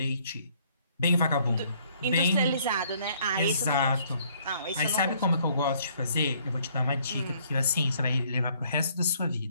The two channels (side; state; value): both; inverted; correlation -0.64